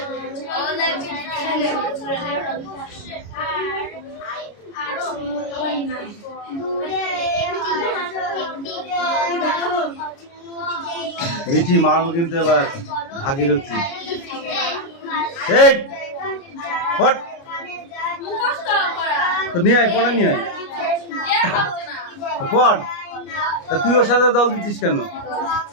মিঠি মারবো কিন্তু এবার ভাগীরথী। এই ফট তো নিয়ে আয়, পড়া নিয়ে আয় পড়। তা তুই ওর সাথে দল দিচ্ছিস কেন?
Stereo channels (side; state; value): right; late; 29 ms